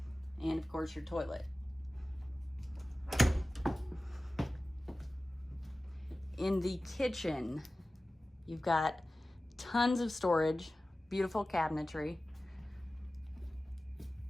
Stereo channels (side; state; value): both; normal; correlation 0.96